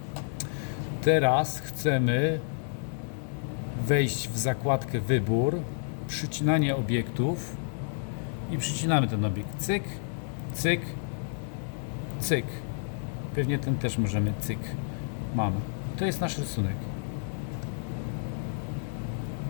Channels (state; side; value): silent; right; 58 dB below the other